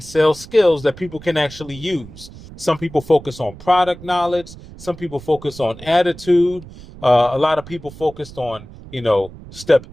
sales skills that people can actually use. Some people focus on product knowledge. Some people focus on attitude. A lot of people focused on, step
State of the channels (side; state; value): right; noise; rumble, 17 dB below the sound